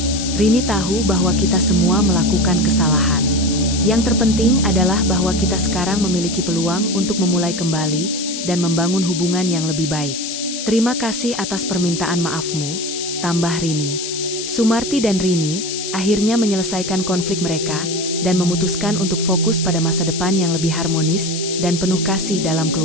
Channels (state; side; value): noise; left; hiss, 6 dB below the sound